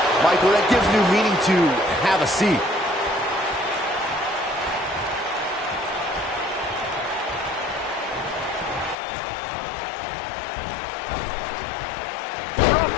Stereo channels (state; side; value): drops out; right; at 9.0 s